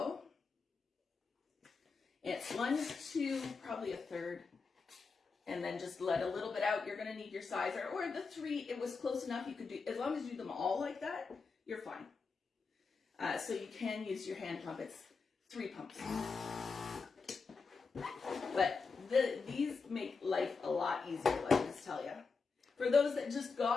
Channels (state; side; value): quieter; right; 4.7 dB